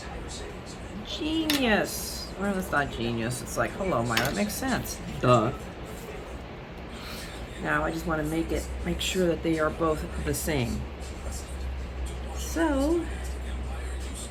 Genius. Well, that's not genius. It's like, hello, Myra. That makes sense. Duh. Now I just want to make sure that they are both the same. So,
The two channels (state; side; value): identical; both; correlation 1.00